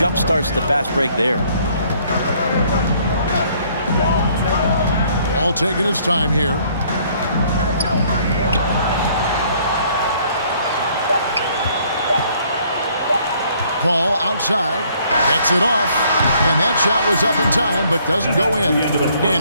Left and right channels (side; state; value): both; inverted; correlation -0.63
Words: starts the fast break there. All taking his time here. Paul outside, gets it off, and that shot was up in time but doesn't go in.